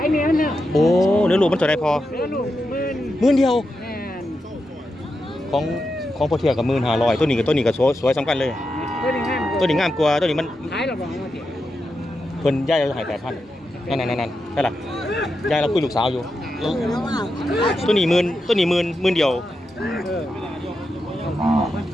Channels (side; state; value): both; normal; correlation 0.87